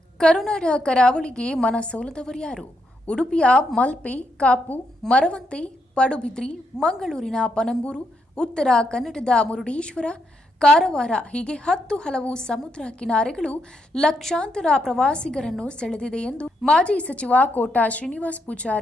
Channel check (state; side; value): normal; both; correlation 0.79